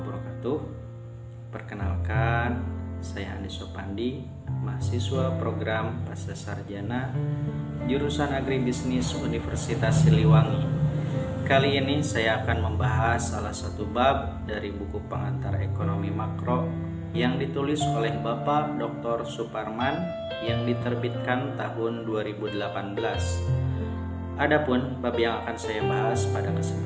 Perkenalkan, saya Andi Sopandi, mahasiswa program Pasca Sarjana jurusan Agribisnis Universitas Siliwangi. Kali ini saya akan membahas salah satu bab dari buku pengantar ekonomi makro yang ditulis oleh Bapak Dr. Suparman yang diterbitkan tahun 2018. Adapun bab yang akan saya bahas pada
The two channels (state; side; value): identical; both; correlation 1.00